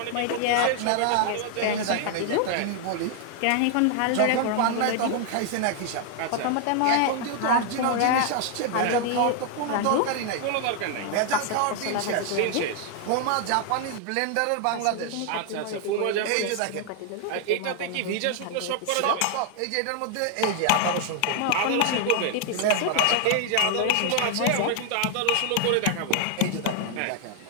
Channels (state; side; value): different; both; correlation 0.00